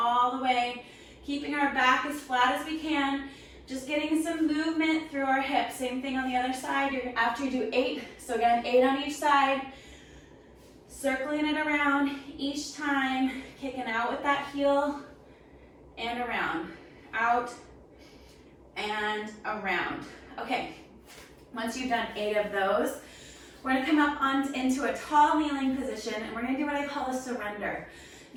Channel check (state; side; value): identical; both; correlation 1.00